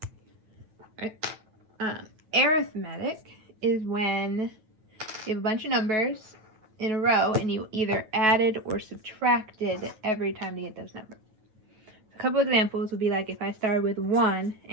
right? Arithmetic is when you have a bunch of numbers in a row and you either added or subtracted every time to get those numbers. A couple examples would be like if I started with 1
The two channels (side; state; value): left; late; 9.3 ms